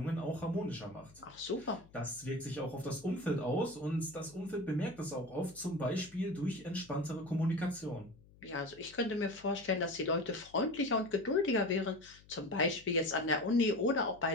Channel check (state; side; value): noise; left; hum, 25 dB below the sound